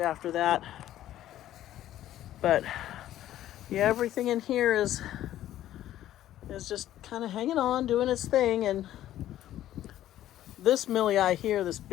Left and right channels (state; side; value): quieter; right; 12.9 dB